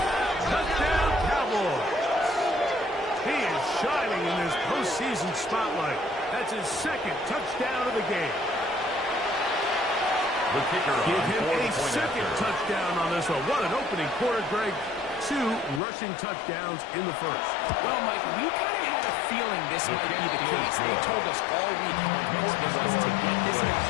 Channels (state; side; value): drops out; right; at 15.8 s